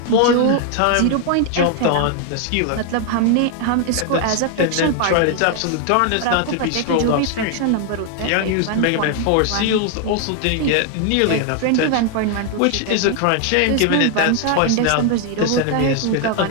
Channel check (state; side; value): different; both; correlation 0.00